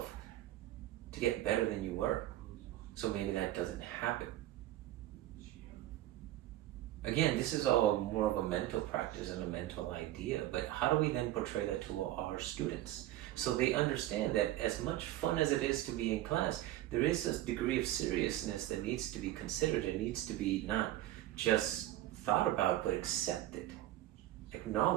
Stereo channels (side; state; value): left; quieter; 14.6 dB